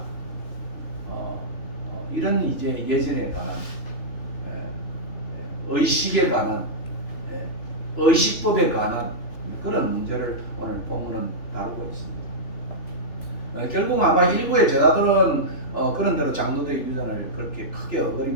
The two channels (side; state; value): right; late; 3.1 ms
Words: 이런 이제 예전에 관한 의식에 관한 의식법에 관한 그런 문제를 오늘 본문은 다루고 있습니다. 결국 아마 일부의 제자들은 그런 대로 장로들의 유전을 그렇게 크게